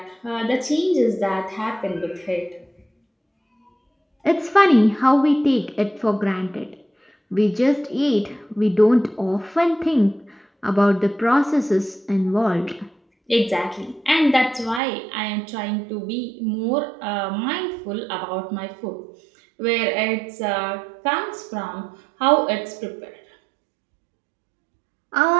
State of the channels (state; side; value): drops out; left; at 14.8 s